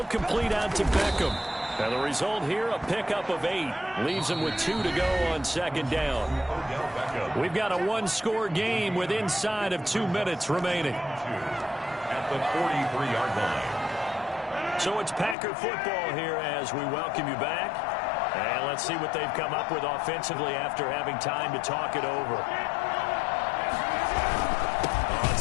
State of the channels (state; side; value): drops out; right; at 15.4 s